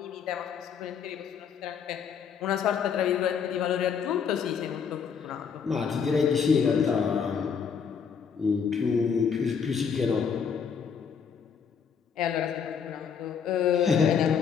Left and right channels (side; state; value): right; quieter; 6.7 dB